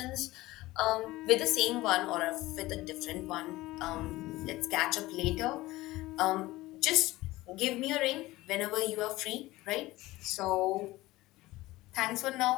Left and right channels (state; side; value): quieter; right; 18.5 dB